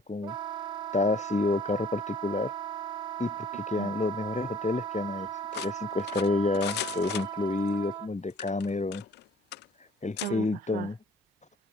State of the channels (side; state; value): both; normal; correlation 0.54